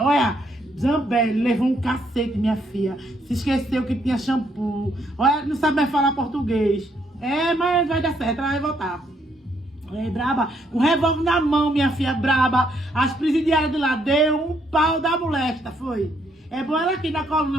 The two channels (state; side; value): normal; both; correlation 0.72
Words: olha, Zambelli levou um cacete, minha filha. Se esqueceu que tinha shampoo. Olha, não sabe mais falar português. É, mas vai dar certo, ela vai voltar. É, braba. Com revólver na mão, minha filha, braba. As presidiárias de lá deu um pau da molesta, foi. É bom ela aqui na coluna,